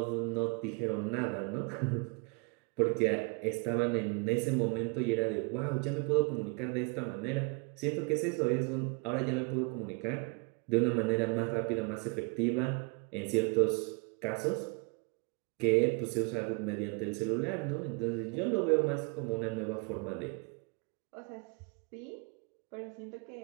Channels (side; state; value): left; quieter; 33.5 dB